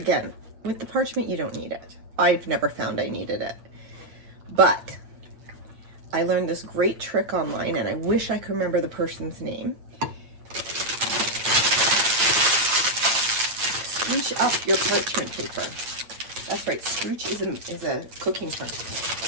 With the parchment, you don't need it. I've never found I needed it. But I learned this great trick online, and I wish I could remember the person's name. Scrooch up your parchment paper. That's right, scrooch is a cooking term.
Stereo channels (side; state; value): left; late; 8.9 ms